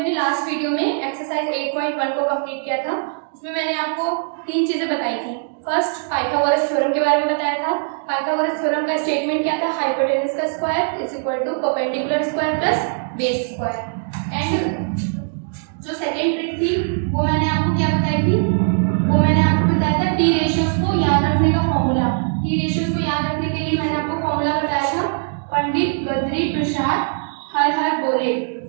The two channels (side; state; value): left; silent; digital silence